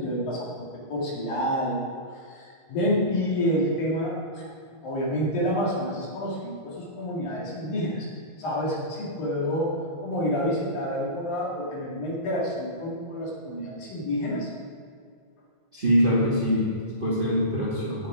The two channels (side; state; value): right; late; 1.5 ms